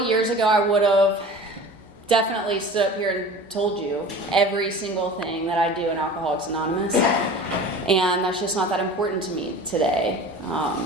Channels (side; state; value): left; noise; hum, 29 dB below the sound